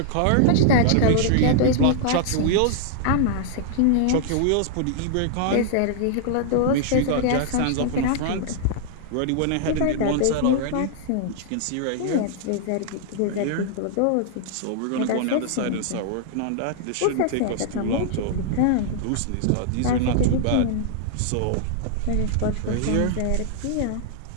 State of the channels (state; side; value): different; both; correlation -0.01